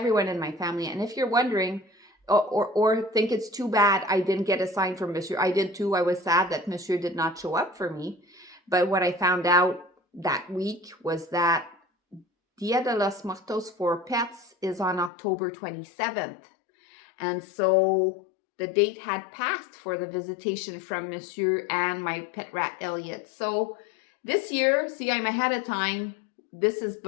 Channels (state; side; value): drops out; right; at 15.1 s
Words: in my family. And if you're wondering or think it's too bad I didn't get a sign from Monsieur, I did too. I was sad that Monsieur did not show up for me. But what I found out that week was that Dia de los Muertos for pets is on October 27th. And so the date had passed for the visitation from Monsieur and my pet rat Elliot. So this year, see, I'm ahead of time.